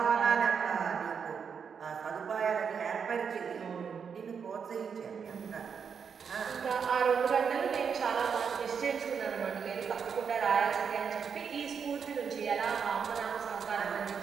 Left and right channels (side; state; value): left; quieter; 6.6 dB